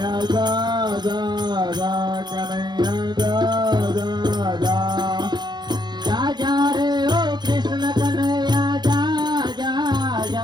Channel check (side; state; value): left; late; 0.21 ms